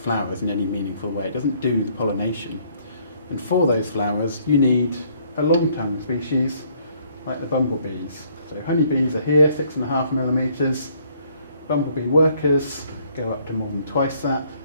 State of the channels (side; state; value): both; inverted; correlation -0.64